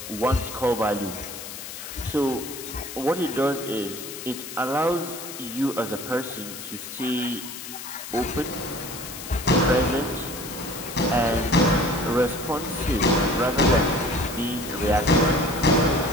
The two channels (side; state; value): left; noise; hiss, 10 dB below the sound